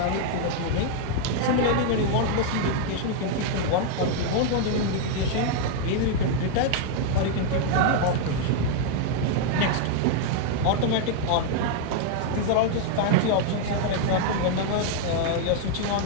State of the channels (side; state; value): both; different; correlation 0.00